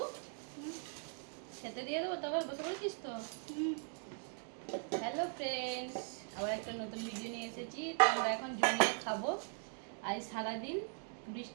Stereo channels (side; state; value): left; silent; 51 dB below the other